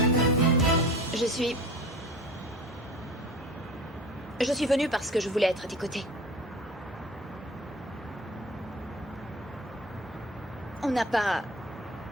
Je suis venue parce que je voulais être à tes côtés. On n'a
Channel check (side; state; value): both; normal; correlation 0.39